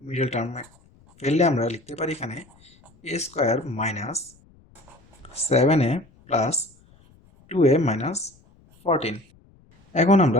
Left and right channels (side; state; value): left; noise; rumble, 29 dB below the sound